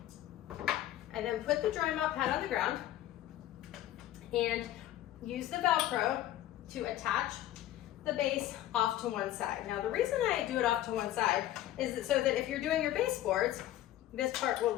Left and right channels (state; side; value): quieter; right; 13.5 dB